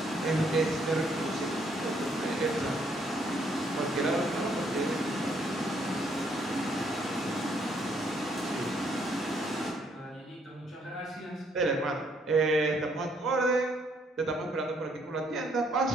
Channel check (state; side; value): normal; both; correlation 0.69